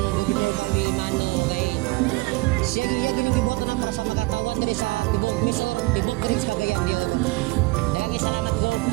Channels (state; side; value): quieter; left; 23.1 dB